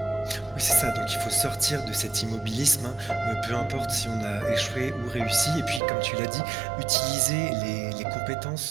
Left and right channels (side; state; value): left; drops out; at 5.8 s